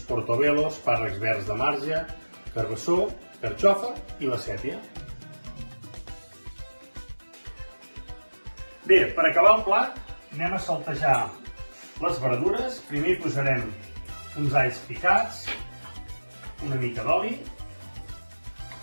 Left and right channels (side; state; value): both; inverted; correlation -1.00